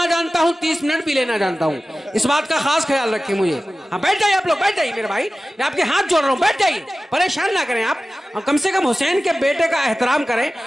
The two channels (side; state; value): both; normal; correlation 0.96